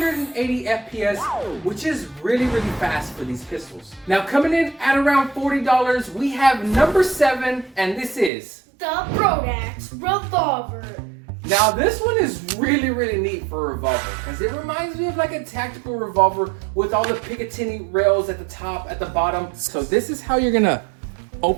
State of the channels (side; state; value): left; drops out; at 8.3 s